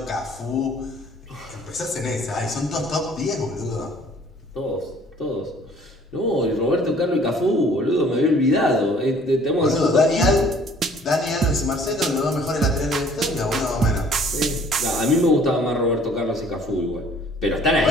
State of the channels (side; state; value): both; normal; correlation 0.55